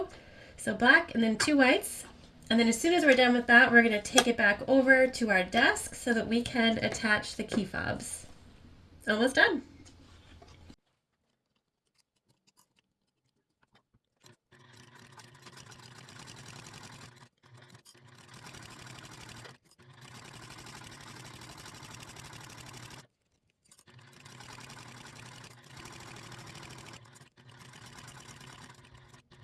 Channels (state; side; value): identical; both; correlation 1.00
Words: So black and then 2 whites, And then as soon as we're done with that, we're going to take it back over to our desk so that we can attach the key fobs. Almost done.